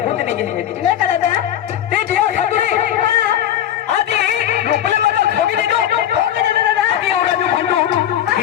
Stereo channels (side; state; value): right; quieter; 11.0 dB